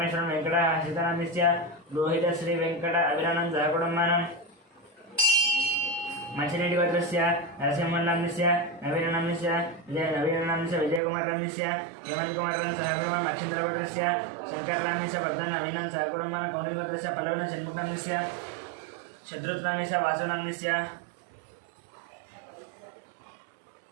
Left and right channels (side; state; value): left; drops out; at 11.0 s